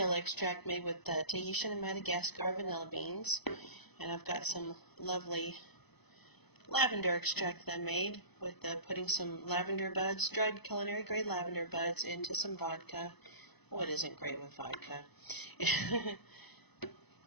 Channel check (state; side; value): late; right; 0.99 ms